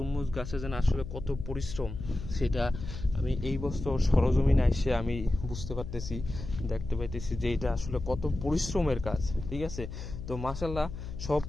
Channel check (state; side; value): noise; left; hum, 9 dB below the sound